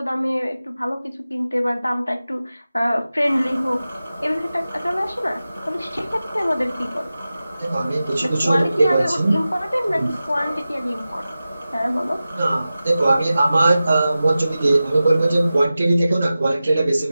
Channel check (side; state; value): both; inverted; correlation -0.95